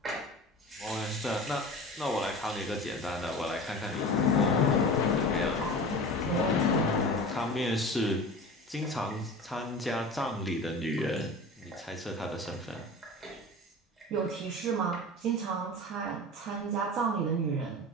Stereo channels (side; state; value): both; normal; correlation 0.34